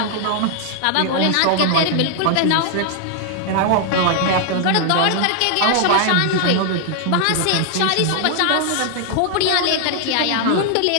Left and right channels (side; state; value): both; different; correlation 0.00